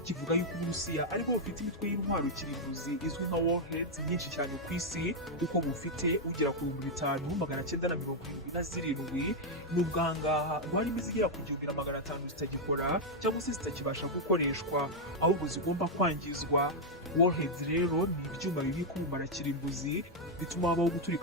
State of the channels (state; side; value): normal; both; correlation -0.01